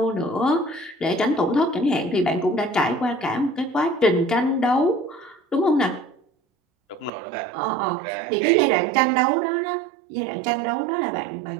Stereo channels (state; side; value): drops out; left; at 7.1 s